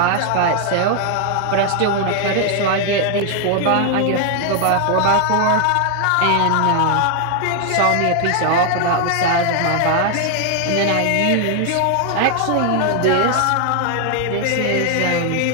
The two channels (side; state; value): both; different; correlation 0.00